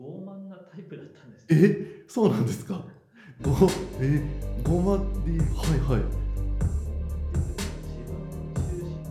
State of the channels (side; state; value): both; identical; correlation 1.00